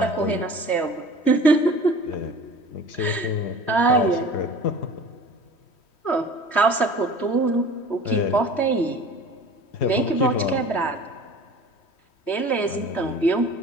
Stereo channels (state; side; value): late; right; 3.1 ms